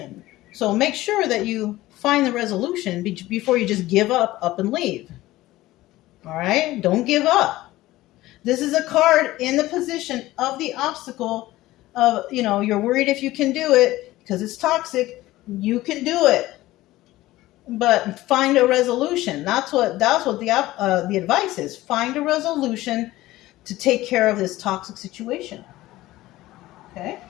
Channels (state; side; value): quieter; right; 17.0 dB